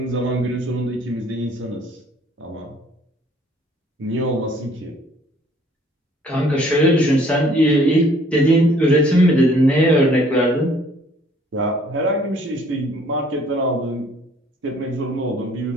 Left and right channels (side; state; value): both; normal; correlation 0.58